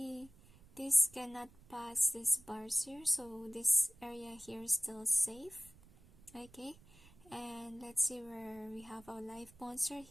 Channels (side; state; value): right; noise; rumble, 24 dB below the sound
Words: this cannot pass this bars here, so this area here is still safe. Okay, and let's see where we have our life monster